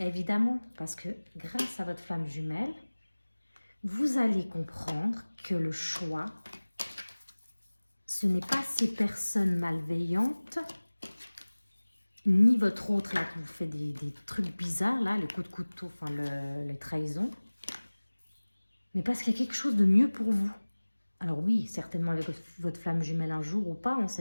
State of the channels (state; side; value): inverted; both; correlation -1.00